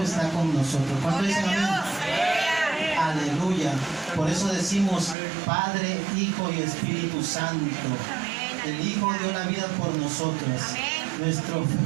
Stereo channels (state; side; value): drops out; left; at 5.2 s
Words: está con nosotros. ¿Cuánto dicen amén? Aleluya. Por eso decimos Padre, Hijo y Espíritu Santo. El Hijo dio la vida por nosotros.